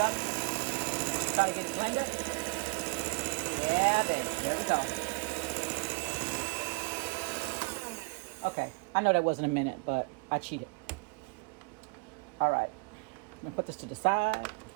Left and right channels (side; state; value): left; quieter; 30.0 dB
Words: up. Try to get it blended. Yeah, baby. There we go. Okay. I know that wasn't a minute, but I cheated. All right. I'm going to put this to the side.